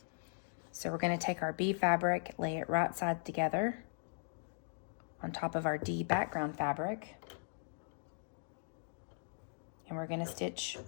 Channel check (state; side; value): silent; right; digital silence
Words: So we're gonna take our B fabric, lay it right side together on top of our D background fabric. And we're gonna stitch